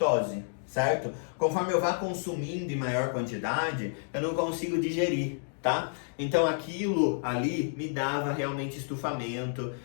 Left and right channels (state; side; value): silent; right; digital silence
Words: certo? Conforme eu vá consumindo em maior quantidade, eu não consigo digerir, tá? Então aquilo ali me dava realmente estufamento